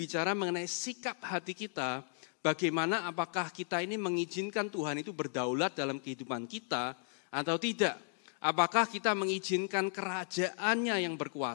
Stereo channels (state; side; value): silent; right; 54 dB below the other